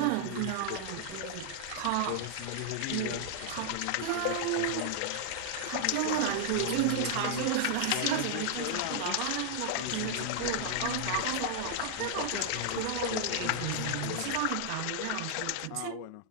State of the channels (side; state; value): both; different; correlation 0.00